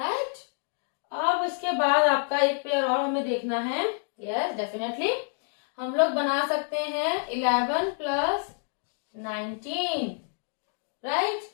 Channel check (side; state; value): right; silent; 59 dB below the other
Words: अब इसके बाद आपका एक पेयर और हमें देखना है, यस डेफिनेटली हम लोग बना सकते हैं 11 + 19, राइट।